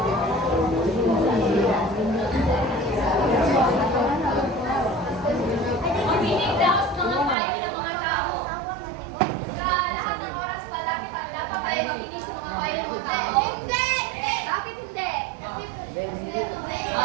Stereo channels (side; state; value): left; drops out; at 7.4 s